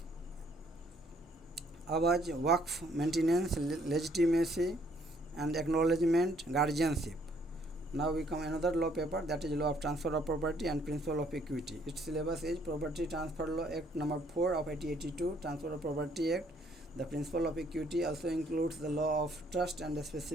awaj, waqf, maintenance, legitimacy, and acknowledgement guardianship. Now we come another law paper, that is law of transfer of property and principle of equity. Its syllabus is Property Transfer Law Act number 4 of 1882, Transfer of Property Act. The principle of equity also includes the law of trust and the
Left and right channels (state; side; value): normal; both; correlation 0.65